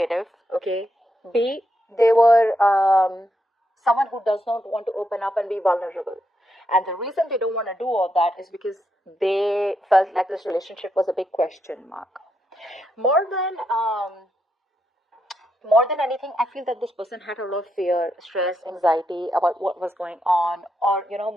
okay? B, they were someone who does not want to open up and be vulnerable. And the reason they don't want to do all that is because they felt like this relationship was a big question mark. More than anything, I feel that this person had a lot of fear, stress, anxiety about what was going on, or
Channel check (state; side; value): normal; both; correlation 0.81